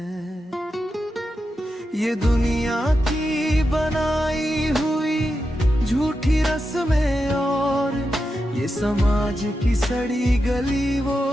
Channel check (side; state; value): both; normal; correlation 0.88